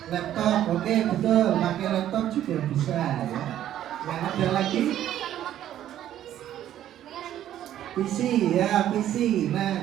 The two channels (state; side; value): quieter; left; 11.7 dB